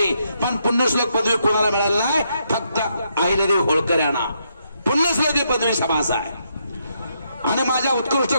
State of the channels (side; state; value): both; inverted; correlation -0.77